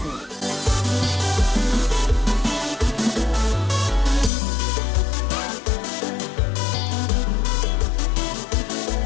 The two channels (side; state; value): right; drops out; at 4.3 s